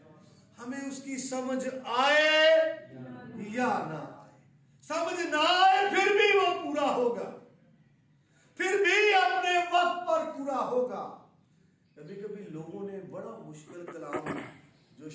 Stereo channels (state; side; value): identical; both; correlation 1.00